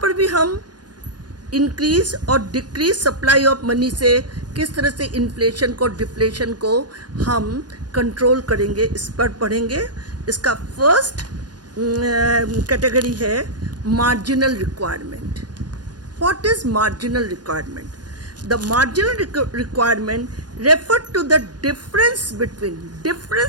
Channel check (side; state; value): left; late; 0.69 ms